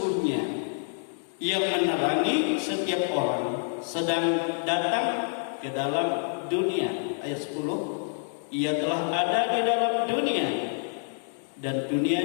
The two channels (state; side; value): silent; right; digital silence